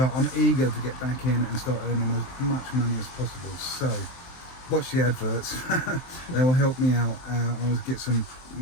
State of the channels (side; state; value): right; late; 23 ms